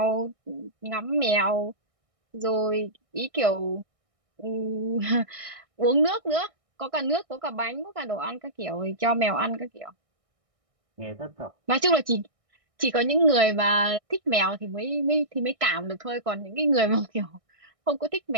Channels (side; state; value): left; late; 1.6 ms